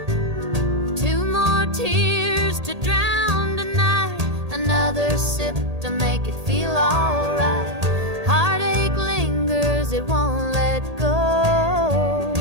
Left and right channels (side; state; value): left; late; 1.8 ms